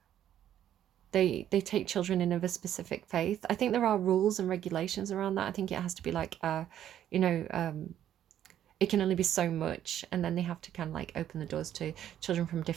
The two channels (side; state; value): left; quieter; 10.9 dB